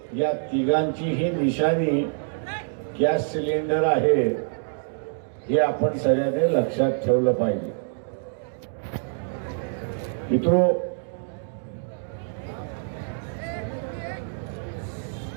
या तिघांचीही निशाणी गॅस सिलेंडर आहे हे आपण सगळ्यांनी लक्षात ठेवलं पाहिजे. मित्रो,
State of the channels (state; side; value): silent; left; digital silence